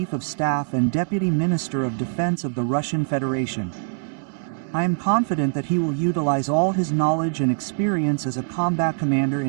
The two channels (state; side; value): silent; left; 63 dB below the other